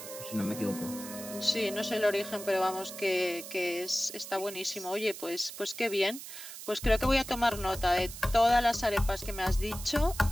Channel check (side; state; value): right; noise; hiss, 11 dB below the sound